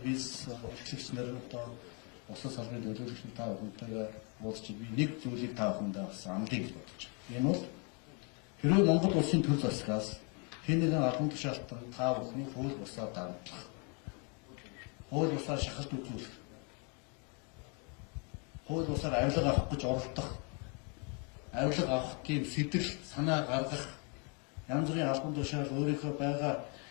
бизнес эрхлэгч нар одоо улсын салбарын төлөөлөгч та бүхэнтэйгээ уулзч би нэг зүйлийг та бүхэндээ бас амлыг гэж бодож байна. Энэ бол хэрвээ Монгол улсын төр засгаас хэн нэгэн албан тушаалтан та бүхний хууль бусаар давтлах, хууль бусаар шахалт үзүүлэх, хууль бусаар авилга авах гэж оролдох, авилга авах тийм сэтэл санаа гаргах, янз бүрийн албан тушаал өөрийнхөө байгаа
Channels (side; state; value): right; quieter; 35.5 dB